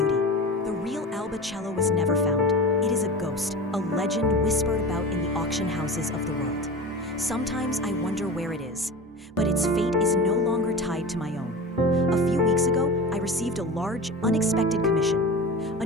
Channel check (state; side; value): normal; both; correlation 0.31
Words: The real Alba cello was never found. It is a ghost, a legend whispered about in the auction houses of the world. Sometimes I wonder where it is, but its fate is no longer tied to my own. A few weeks ago, I received a large, unexpected commission. A